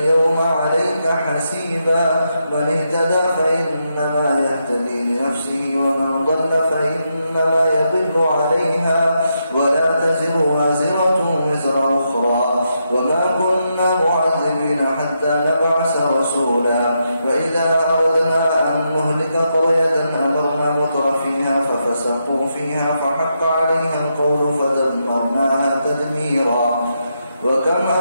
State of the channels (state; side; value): inverted; both; correlation -0.82